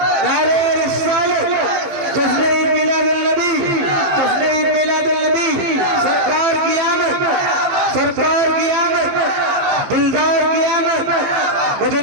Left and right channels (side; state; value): left; late; 15 ms